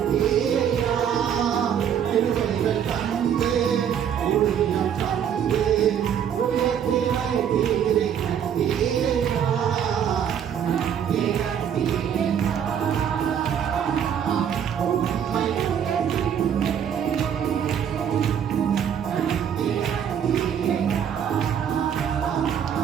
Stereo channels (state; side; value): quieter; left; 8.6 dB